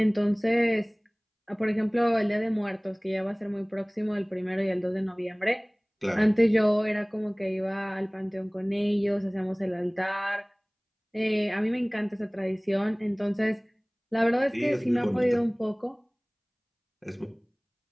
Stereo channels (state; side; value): identical; both; correlation 1.00